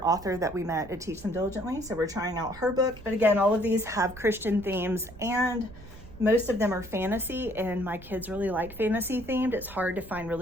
author that we met at Teach Them Diligently. So we're trying out her book. But again, all of these have Christian themes, and most of them are fantasy, and my kids really like fantasy themed. It's hard to find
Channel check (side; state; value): right; noise; rumble, 18 dB below the sound